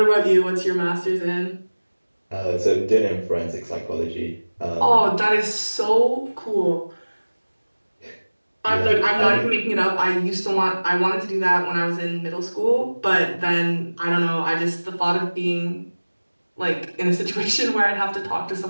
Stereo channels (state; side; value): inverted; both; correlation -1.00